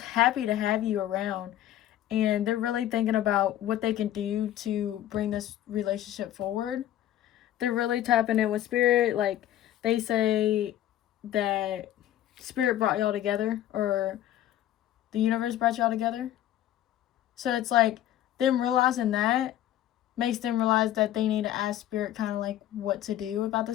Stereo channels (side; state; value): right; quieter; 12.6 dB